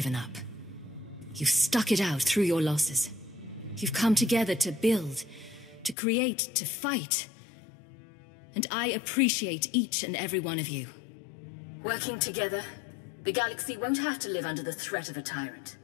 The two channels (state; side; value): drops out; right; at 6.0 s